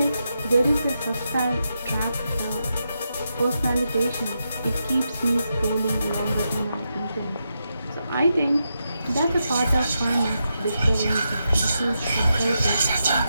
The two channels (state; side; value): inverted; both; correlation -0.85